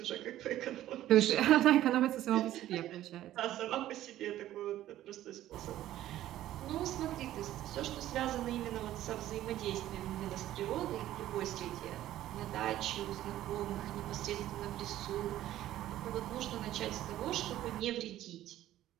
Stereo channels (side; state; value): left; quieter; 13.6 dB